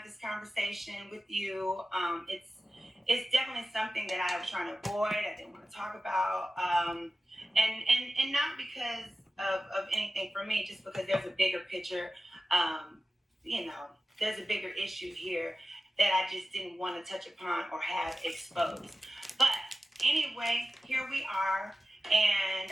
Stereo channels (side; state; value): both; normal; correlation 0.94